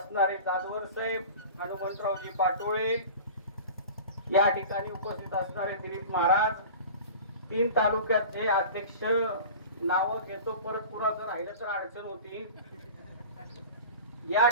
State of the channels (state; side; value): inverted; both; correlation -0.37